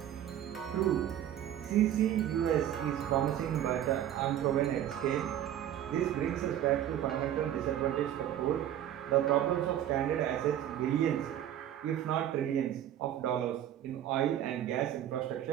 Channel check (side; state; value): left; quieter; 11.3 dB